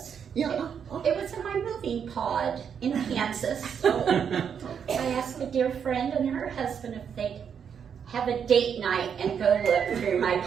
Yeah. It was in my moving pod in Kansas. So I asked a dear friend and her husband if they'd have a date night and go look through my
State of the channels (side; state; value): left; quieter; 7.5 dB